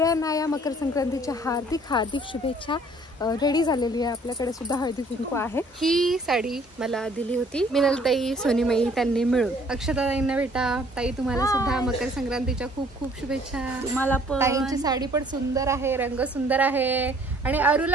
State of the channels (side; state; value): both; normal; correlation 0.58